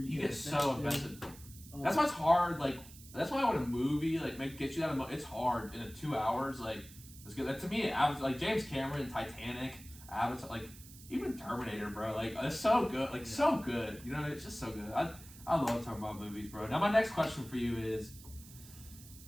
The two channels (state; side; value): noise; right; hiss, 18 dB below the sound